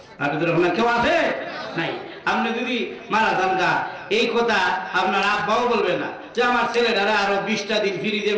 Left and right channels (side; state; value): both; identical; correlation 1.00